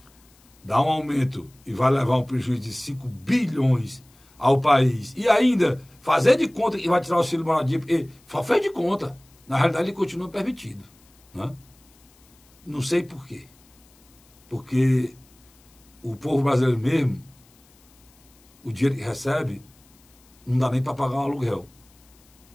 dá um aumento e vai levar um prejuízo de 5 bilhões ao país. E ainda fazer de conta que vai tirar o auxílio moradia, porque só fez de conta. Na realidade, ele continua permitido, né? Não sei por quê. Porque o povo brasileiro mesmo, o dinheiro que recebe, não dá nem para pagar um aluguel.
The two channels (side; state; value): left; noise; hiss, 30 dB below the sound